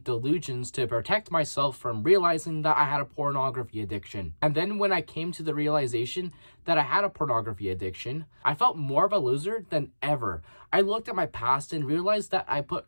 to protect myself from realizing that I had a pornography addiction. And then when I came to the realization that I had a pornography addiction, I felt more of a loser than ever. I looked at my past and realized that I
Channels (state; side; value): inverted; both; correlation -1.00